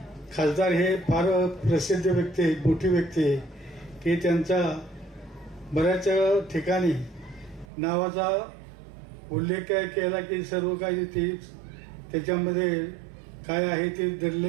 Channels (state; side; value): drops out; left; at 7.7 s